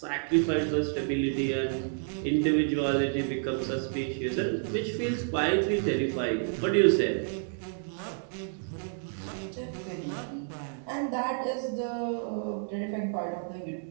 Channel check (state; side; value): silent; left; digital silence